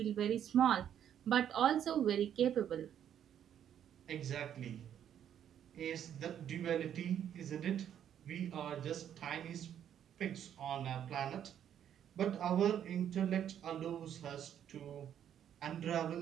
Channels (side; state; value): left; quieter; 9.7 dB